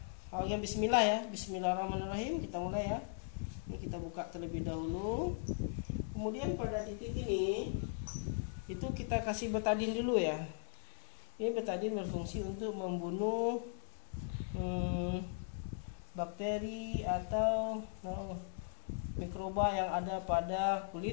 awalnya bismillah ya, bismillahirrahmanirrahim, kita mulai ya. Ini kita buka terlebih dahulu. Kemudian pada titik ini itu kita kasih betadin dulu ya. Ini betadin berfungsi untuk membunuh bakteri atau mikroba yang ada pada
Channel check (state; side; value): silent; right; digital silence